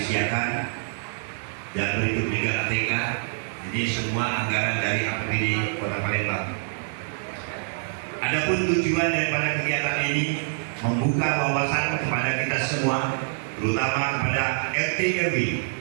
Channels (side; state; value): left; silent; 61 dB below the other